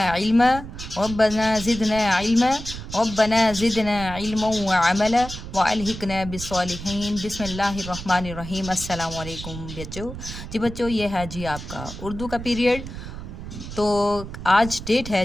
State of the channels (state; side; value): noise; right; rumble, 10 dB below the sound